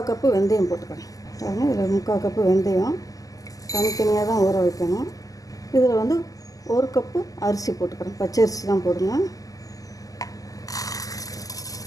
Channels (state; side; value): late; right; 0.17 ms